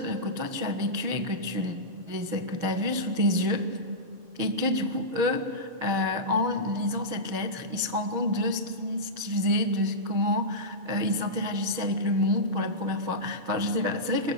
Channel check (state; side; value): late; left; 6.4 ms